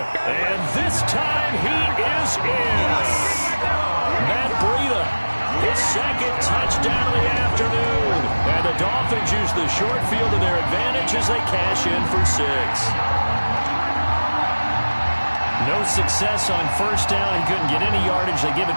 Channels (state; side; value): inverted; both; correlation -1.00